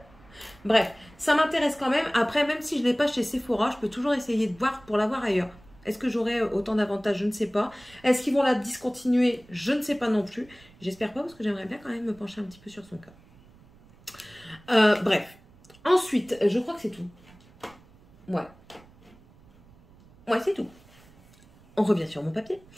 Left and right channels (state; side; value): noise; right; rumble, 26 dB below the sound